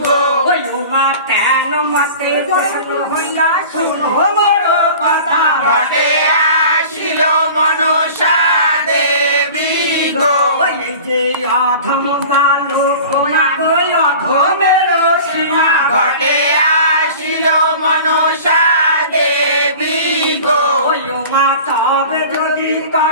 গো। ওই উমা কেন মতে প্রশ্ন হইয়া শুনো মোর কথা। ঘটে আসিল মনসা দেবী গো। ওই যে অধম বালক না গো অধমের সীমা। ঘটে আসিল মনসা দেবী গো। ওই উমা তবে যদি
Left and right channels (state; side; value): inverted; both; correlation -0.40